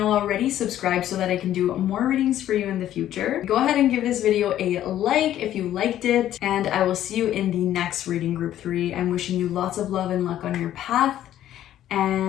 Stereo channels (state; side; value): quieter; right; 12.1 dB